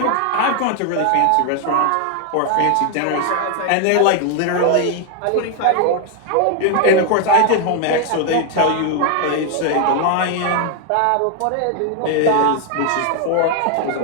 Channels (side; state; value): both; different; correlation 0.00